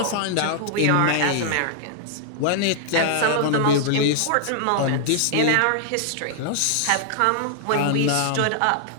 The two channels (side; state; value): both; different; correlation 0.00